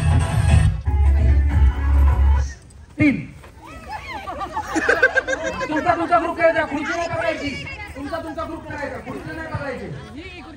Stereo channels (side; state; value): both; identical; correlation 1.00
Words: तुमचा ग्रुप करायचा, खुर्ची नाही पकडायची. तुमचा ग्रुप करायचा, खुर्ची नाही पकडायची.